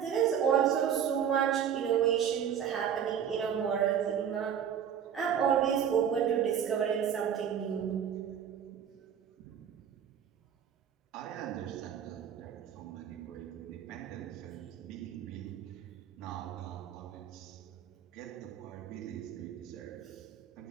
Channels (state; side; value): quieter; left; 8.6 dB